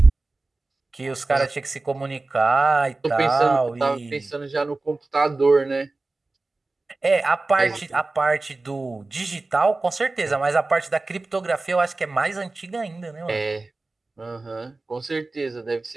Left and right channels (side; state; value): left; quieter; 3.3 dB